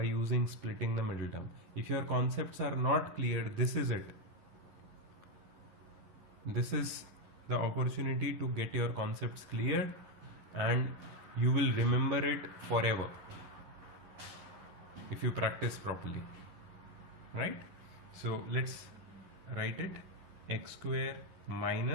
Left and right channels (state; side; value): late; left; 11 ms